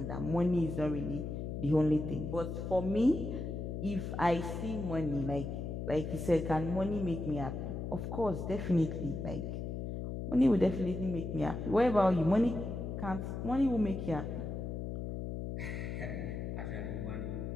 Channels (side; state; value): left; noise; hum, 4 dB below the sound